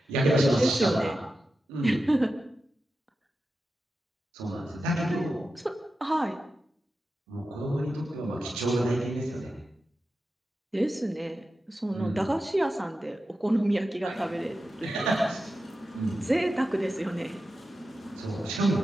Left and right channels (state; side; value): normal; both; correlation 0.91